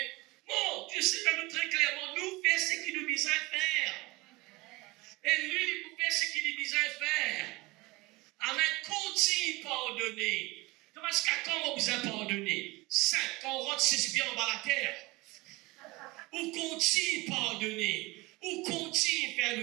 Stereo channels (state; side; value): quieter; left; 22.4 dB